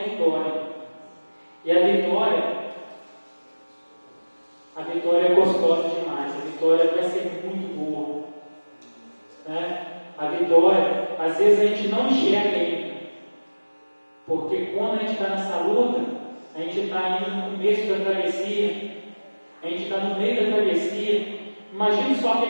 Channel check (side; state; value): both; inverted; correlation -1.00